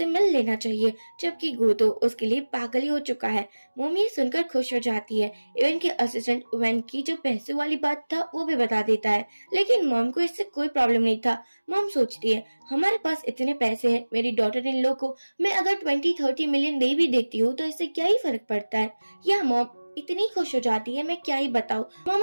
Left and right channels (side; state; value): both; inverted; correlation -1.00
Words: मिल लेना चाहिए, जबकि गो तो उसके लिए पागल ही हो चुका है। मॉम ये सुनकर खुश हो जाती है। इवन के असिस्टेंट वैन की जो पैसे वाली बात था वो भी बता देता है, लेकिन मॉम को इससे कोई प्रॉब्लम नहीं था। मॉम सोचती है, हमारे पास इतने पैसे हैं, मेरी डॉटर इन लॉ को मैं अगर 20-30 मिलियन दे भी देती हूँ तो इससे क्या ही फर्क पड़ता है। यह मॉम इतनी खुश हो जाती है, मैं क्या ही बताऊं।